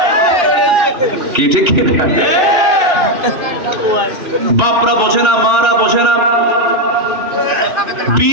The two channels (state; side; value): late; left; 2.9 ms